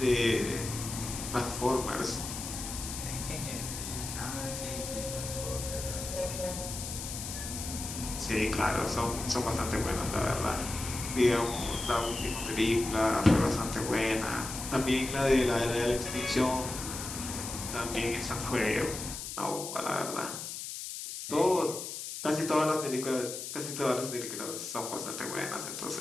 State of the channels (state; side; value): noise; left; hiss, 7 dB below the sound